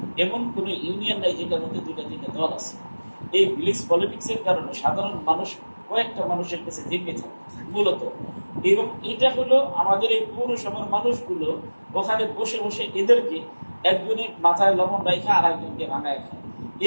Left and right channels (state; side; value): inverted; both; correlation -1.00